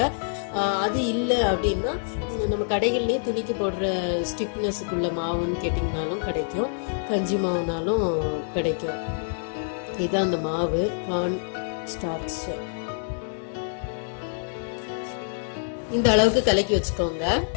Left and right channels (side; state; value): right; silent; digital silence